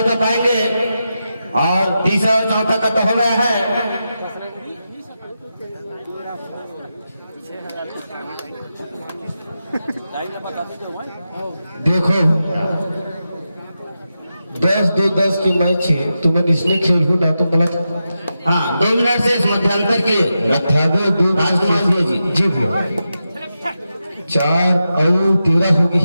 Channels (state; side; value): inverted; both; correlation -0.89